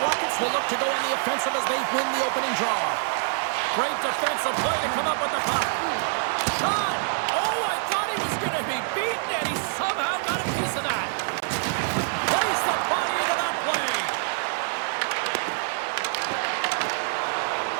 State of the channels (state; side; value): silent; left; digital silence